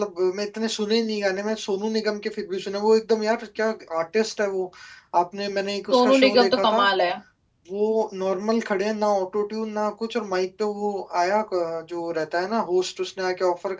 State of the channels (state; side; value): identical; both; correlation 1.00